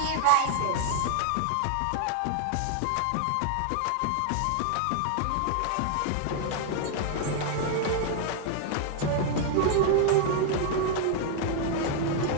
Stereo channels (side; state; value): both; different; correlation 0.00